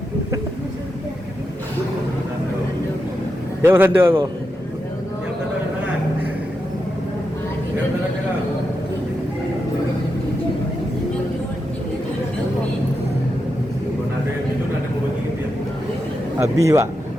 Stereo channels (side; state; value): both; normal; correlation 0.87